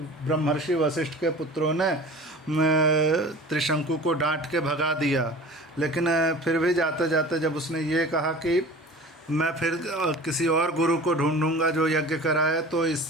ब्रह्मर्षि वशिष्ठ के पुत्रों ने त्रिशंकु को डांट के भगा दिया। लेकिन फिर भी जाते जाते जब उसने ये कहा कि मैं फिर किसी और गुरु को ढूंढूंगा जो यज्ञ कराए, तो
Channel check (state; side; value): normal; both; correlation 0.40